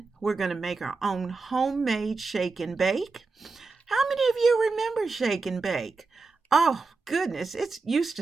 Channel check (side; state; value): left; quieter; 4.1 dB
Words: we're going to make our own homemade shake and bake. How many of you remember shake and bake? Oh, goodness, it used